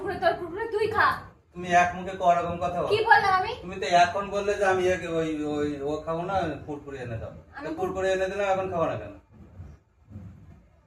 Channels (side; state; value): both; identical; correlation 1.00